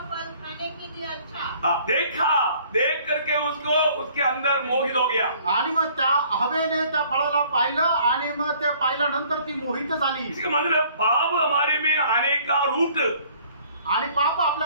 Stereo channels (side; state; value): both; inverted; correlation -0.57